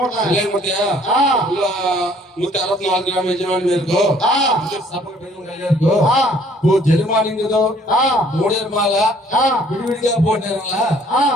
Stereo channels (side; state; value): both; normal; correlation 0.59